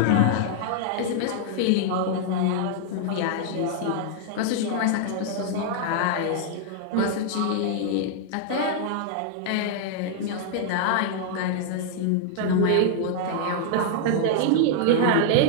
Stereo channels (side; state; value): both; different; correlation -0.01